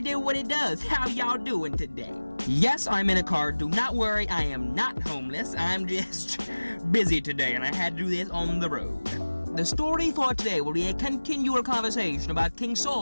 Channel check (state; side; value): inverted; both; correlation -1.00